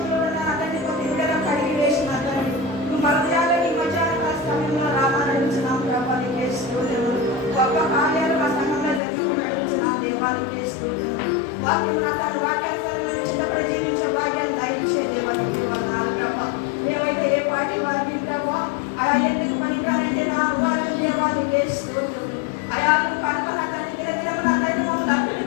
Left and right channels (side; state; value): right; drops out; at 9.0 s